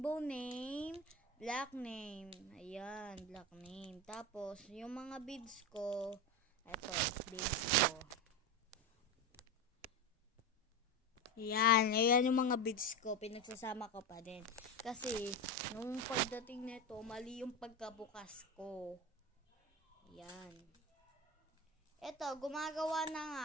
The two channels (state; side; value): normal; both; correlation 0.19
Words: name, black name. Ayan, black name. Tapos, yung mga beads ko, ito, beads ko. Ayan yung mga beads ko. Pinagsasama ko pa din. Kasi, nung pagdating nito, mali yung pagkabukas ko. Ayan. Ito, gumagawa na nga